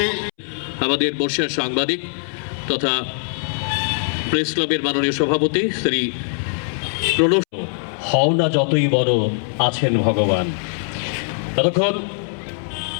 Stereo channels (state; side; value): silent; right; 65 dB below the other